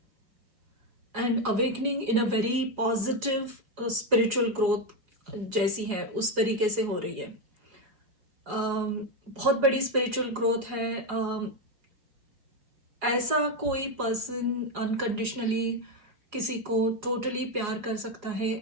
And awakening in a very positive spiritual growth जैसी है, उस तरीके से हो रही है। बहुत बड़ी स्पिरिचुअल ग्रोथ है। ऐसा कोई पर्सन अनकंडीशनली किसी को टोटली प्यार कर सकता है,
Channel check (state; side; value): late; left; 4.8 ms